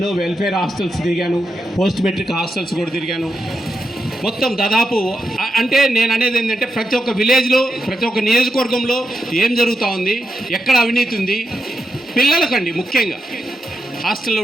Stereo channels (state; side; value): normal; both; correlation 0.86